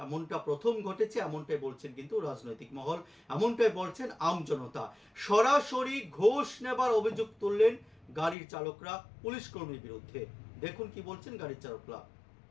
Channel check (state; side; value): drops out; right; at 8.3 s